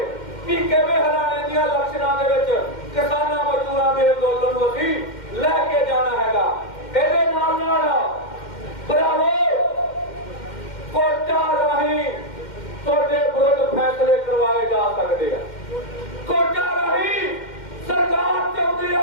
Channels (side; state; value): right; late; 2.1 ms